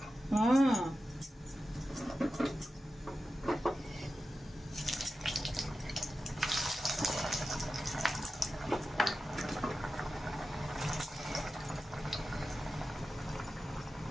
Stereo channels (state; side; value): normal; both; correlation 0.92